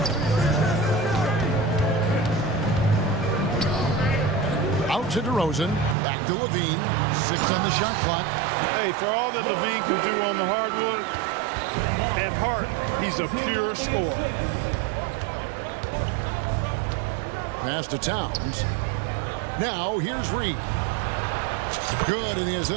Out to DeRozan. Back to Levine. 6 on the shot clock. Hey, for all that Levine can do on the hardwood, at heart, he's a pure scorer. Pass to Towns. Now, here's Reed. Good, and the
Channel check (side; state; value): left; drops out; at 6.0 s